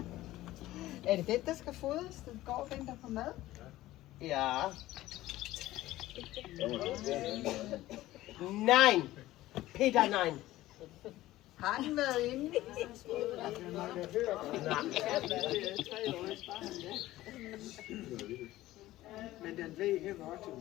Er det den, der skal fodres? Den går og venter på mad? Ja. Nej. Peter, nej. Har den været inde? Men den ved helt godt, til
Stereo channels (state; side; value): quieter; right; 16.1 dB